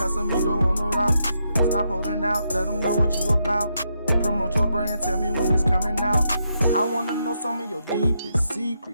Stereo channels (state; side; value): inverted; both; correlation -0.81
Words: on the rocks. Stop holding out, let them know what you about. Promote your brand, tell me when it's coming out. I wanna know some of your deepest